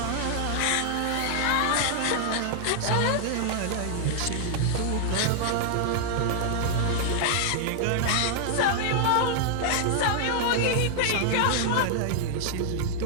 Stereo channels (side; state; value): both; different; correlation -0.01